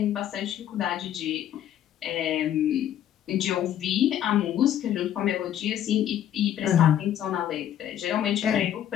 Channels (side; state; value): right; quieter; 10.8 dB